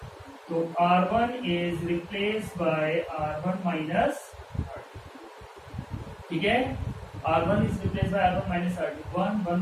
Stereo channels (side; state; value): both; identical; correlation 1.00